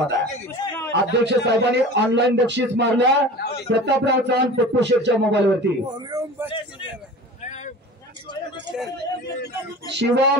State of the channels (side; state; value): both; normal; correlation 0.38